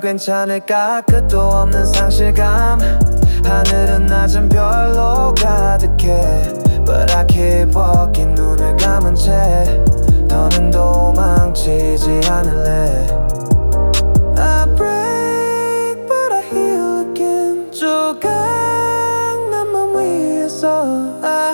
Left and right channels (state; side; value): inverted; both; correlation -1.00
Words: 끝도 없는 상실감. 하늘은 낮은 별로 가득해. But I keep walking 눈을 감은 채 더는 도망치지 않을래 I break but I heal again 조각난 맘 위에서